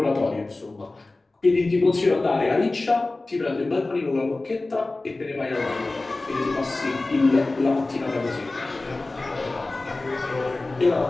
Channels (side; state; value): right; quieter; 3.1 dB